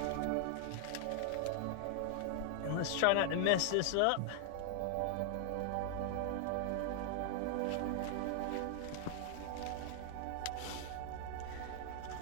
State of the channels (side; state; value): both; different; correlation 0.00